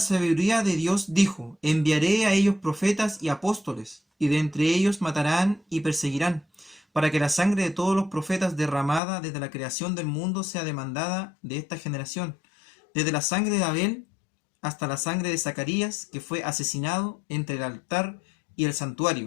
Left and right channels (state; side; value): drops out; right; at 9.0 s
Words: de Dios dijo, enviaré a ellos profetas y apóstoles, y de entre ellos matarán y perseguirán, para que la sangre de todos los profetas derramada desde la creación del mundo sea demandada de esta generación, desde la sangre de Abel hasta la sangre de Zacarías, que fue asesinado entre el altar y el